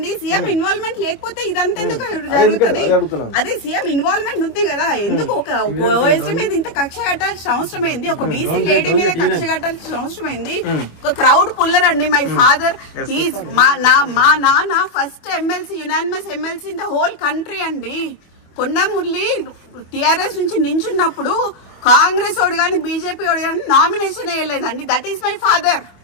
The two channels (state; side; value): late; right; 25 ms